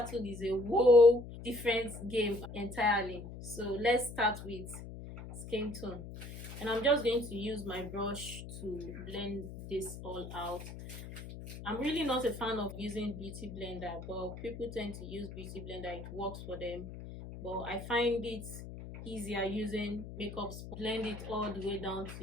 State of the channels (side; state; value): left; noise; hum, 11 dB below the sound